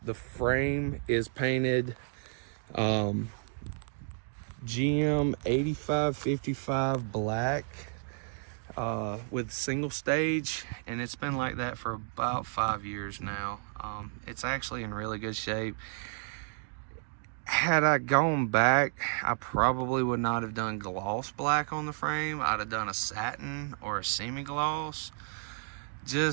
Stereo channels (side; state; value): left; silent; digital silence